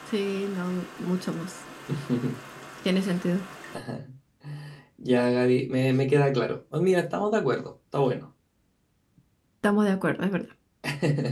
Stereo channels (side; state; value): both; identical; correlation 1.00